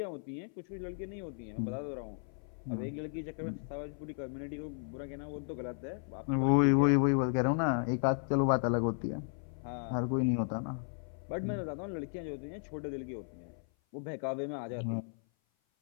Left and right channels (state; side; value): silent; right; 54 dB below the other